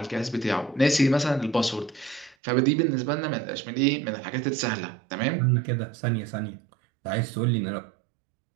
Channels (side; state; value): left; drops out; at 2.4 s